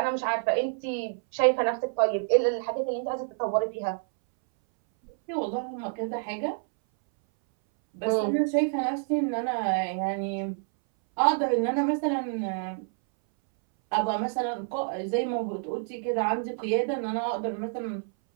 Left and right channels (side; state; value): left; silent; 59 dB below the other